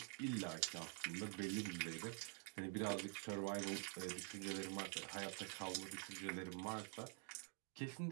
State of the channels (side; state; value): left; quieter; 39.8 dB